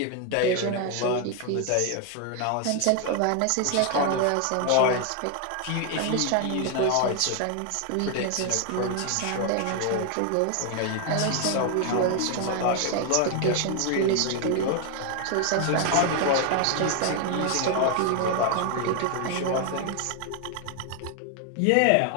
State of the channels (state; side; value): different; both; correlation 0.00